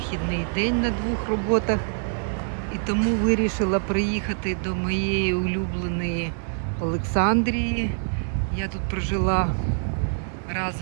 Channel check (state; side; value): silent; left; digital silence